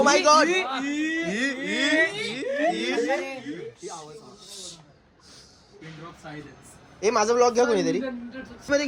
माय गॉड ए माझा ब्लॉग घ्या कोणीतरी मध्ये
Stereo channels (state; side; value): identical; both; correlation 1.00